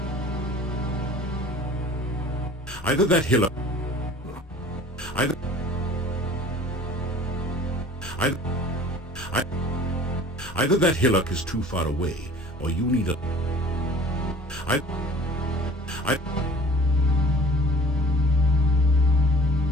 Either that hill. Either. Either that hillock is too far away, or you need a...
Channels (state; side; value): normal; both; correlation 0.48